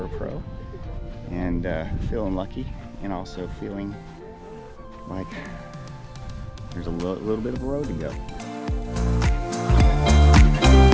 pro, and feeling lucky, and also feeling like there's a little bit of a road to go.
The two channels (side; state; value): both; identical; correlation 1.00